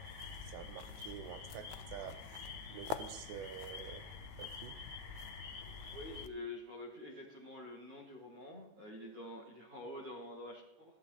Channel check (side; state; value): left; late; 19 ms